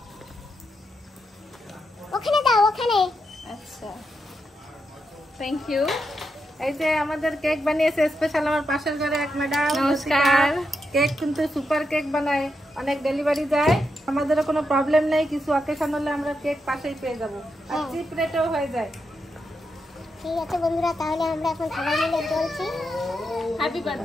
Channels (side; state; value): both; normal; correlation 0.84